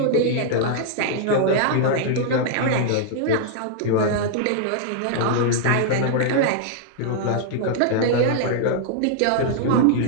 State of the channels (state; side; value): different; both; correlation -0.01